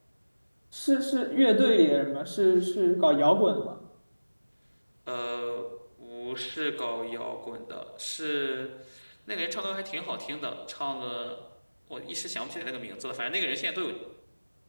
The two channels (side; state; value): both; inverted; correlation -1.00